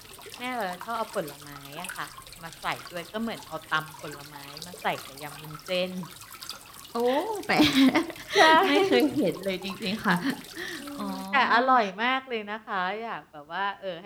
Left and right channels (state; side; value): identical; both; correlation 1.00